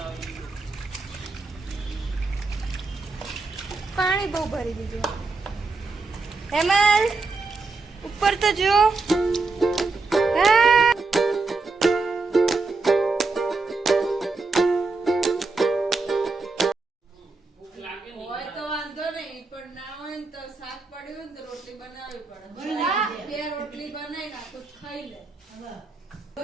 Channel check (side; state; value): left; quieter; 3.8 dB